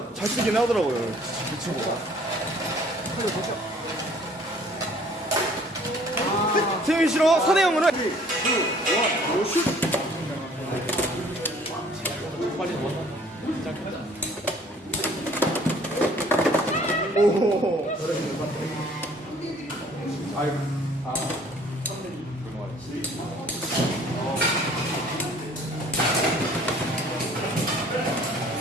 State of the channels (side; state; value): both; normal; correlation 0.55